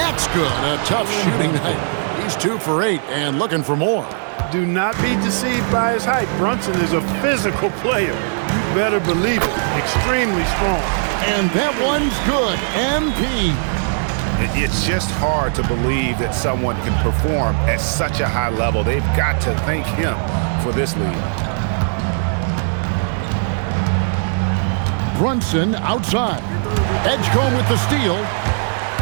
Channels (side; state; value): left; silent; digital silence